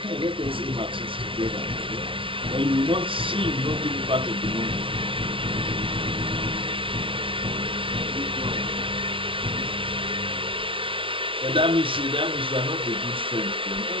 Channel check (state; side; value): late; left; 0.25 ms